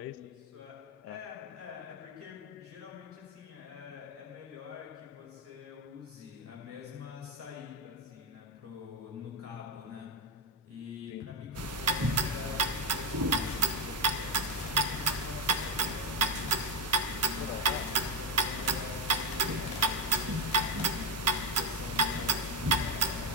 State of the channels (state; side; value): normal; both; correlation 0.07